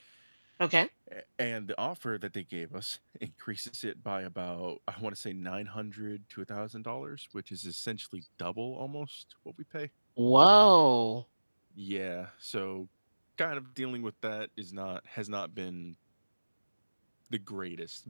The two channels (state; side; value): inverted; both; correlation -1.00